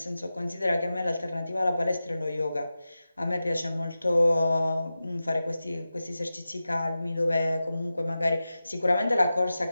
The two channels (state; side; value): inverted; both; correlation -0.94